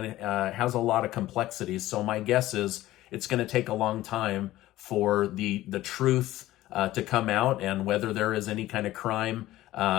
it has a lot of complexities. So my guess is it's going to take a long time for the truth to come out and whether there is any kind of crime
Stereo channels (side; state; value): right; quieter; 15.7 dB